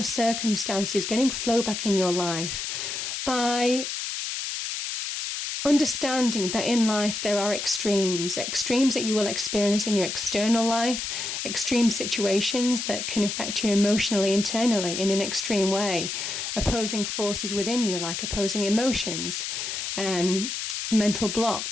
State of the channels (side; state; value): left; noise; hiss, 4 dB below the sound